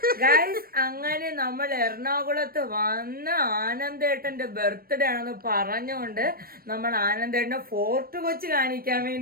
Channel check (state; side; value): late; left; 0.43 ms